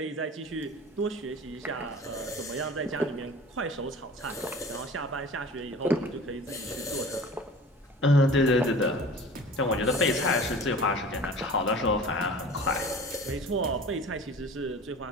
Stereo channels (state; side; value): normal; both; correlation 0.41